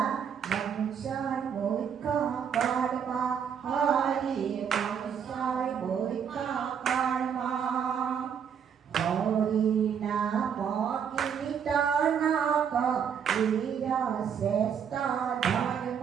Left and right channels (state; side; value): quieter; left; 7.7 dB